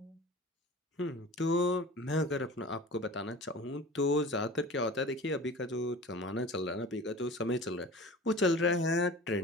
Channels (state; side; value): normal; both; correlation 0.38